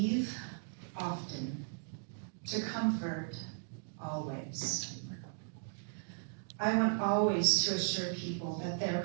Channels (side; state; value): left; silent; digital silence